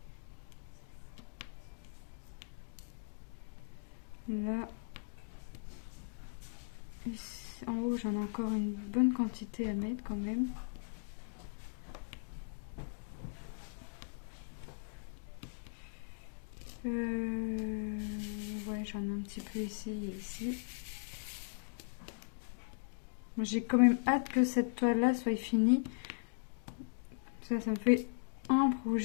Là. Ici, en haut, j'en ai encore une bonne quantité à mettre quand même. Ouais, j'en ai un petit peu ici et ici. J'ai quand même hâte que cette toile-là soit finie. Ça me fait un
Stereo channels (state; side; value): silent; right; digital silence